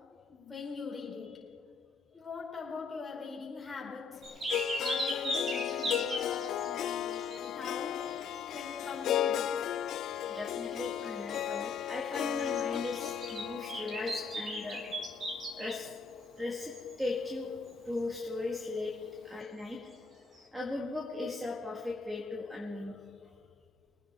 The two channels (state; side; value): quieter; right; 5.0 dB